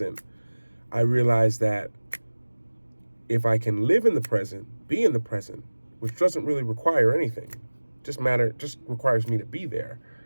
I realize that if I can live in the present, be in the present, which doesn't really require anything, just requires me to be there,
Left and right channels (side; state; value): both; inverted; correlation -1.00